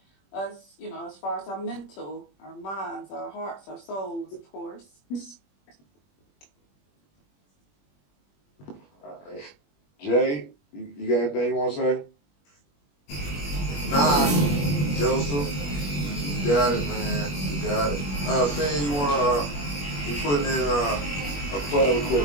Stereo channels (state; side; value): late; right; 21 ms